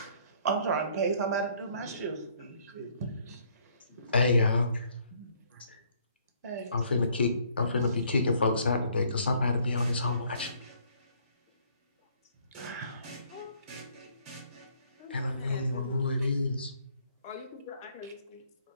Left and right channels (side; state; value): both; inverted; correlation -0.63